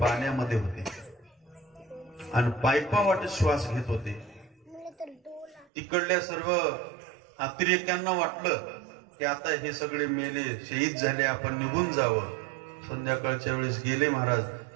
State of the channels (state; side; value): drops out; left; at 5.7 s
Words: होते आणि पायपावाटे श्वास घेत होते. तिकडल्या सर्व अतिरेक्यांना वाटलं की आता हे सगळे मेले, शहीद झाले, आपण निघून जावं. संध्याकाळच्या वेळेस गेले महाराज,